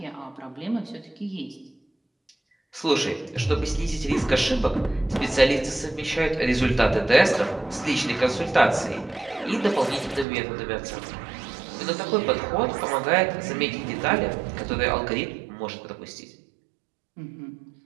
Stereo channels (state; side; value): drops out; left; at 10.2 s